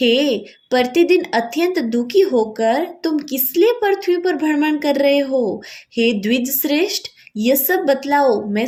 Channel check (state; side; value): identical; both; correlation 1.00